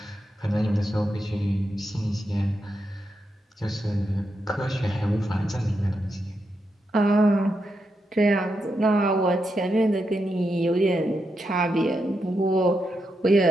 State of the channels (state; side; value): normal; both; correlation 0.84